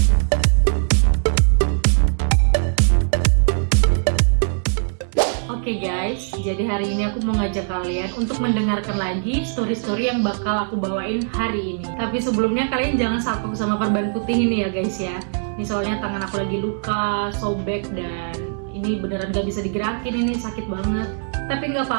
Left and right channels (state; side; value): silent; left; digital silence